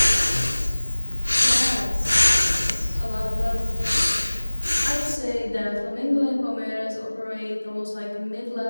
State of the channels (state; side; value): inverted; both; correlation -1.00